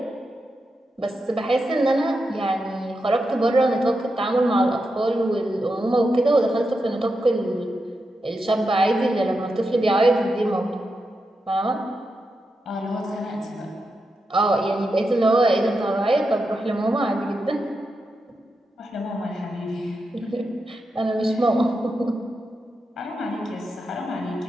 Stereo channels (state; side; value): normal; both; correlation 0.87